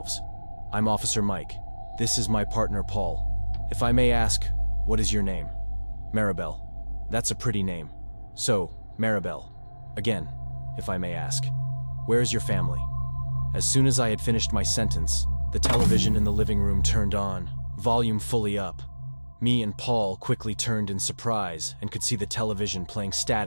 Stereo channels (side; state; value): both; inverted; correlation -1.00